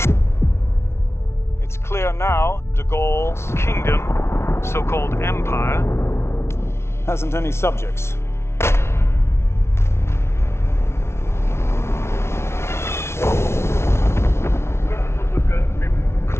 It's clear now de Gaulle's kingdom, so-called empire, hasn't any subjects.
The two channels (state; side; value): late; right; 0.13 ms